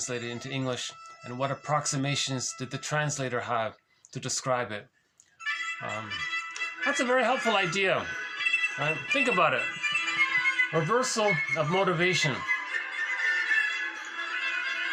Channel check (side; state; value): both; identical; correlation 1.00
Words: it into English, and what approximations did the translator have to describe it. That's a very helpful idea. Right? Think about it. Reversal of motivation.